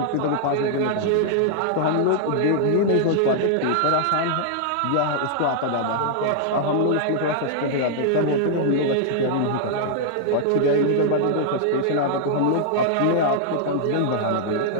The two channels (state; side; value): different; both; correlation -0.01